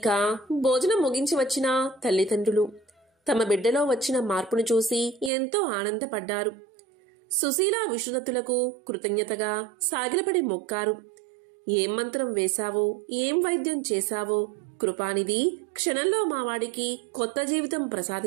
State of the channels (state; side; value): drops out; left; at 5.3 s